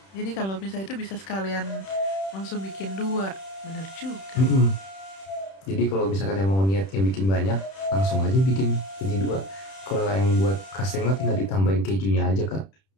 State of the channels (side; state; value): right; late; 31 ms